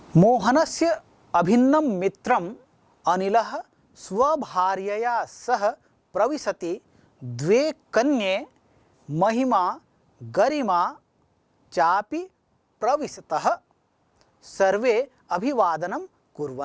मोहनस्य अभिन्नम मित्रम अनिलः स्वभार्यया सह प्रविशति द्वे कन्ये महिमा गरिमा चापि प्रविशतः सर्वे अभिवादनम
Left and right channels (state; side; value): identical; both; correlation 1.00